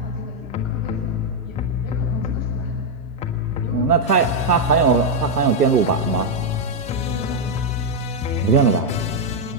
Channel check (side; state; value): both; normal; correlation 0.00